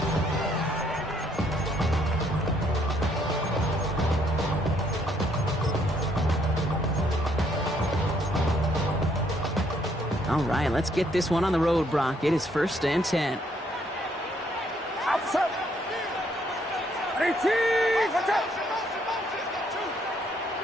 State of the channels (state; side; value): normal; both; correlation 0.69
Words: All right, let's get this one on the road, Brock. It is 1st and 10. Outside.